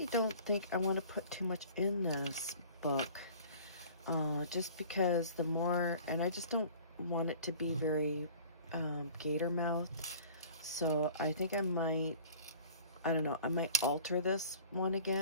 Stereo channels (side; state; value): both; inverted; correlation -0.46